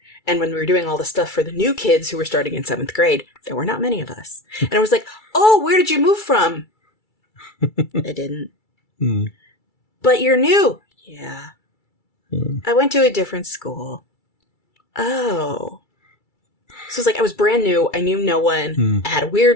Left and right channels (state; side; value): late; right; 2.3 ms